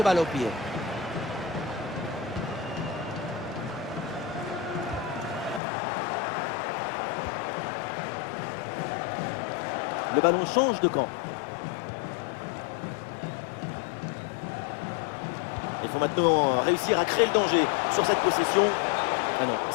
balle au pied. Le ballon change de camp. Il faut maintenant réussir à créer le danger sur cette possession. Ah non,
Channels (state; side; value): drops out; right; at 5.6 s